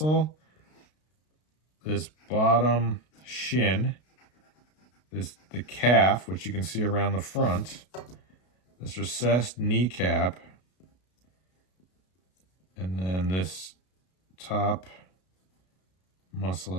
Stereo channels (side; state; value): right; late; 32 ms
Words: this bottom shin, the calf, which you can see around the front, this recessed kneecap, and then this top muscle